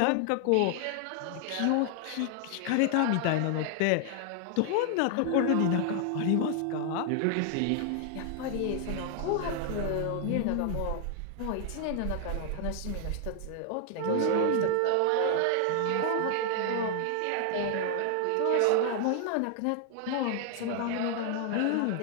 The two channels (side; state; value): both; different; correlation 0.00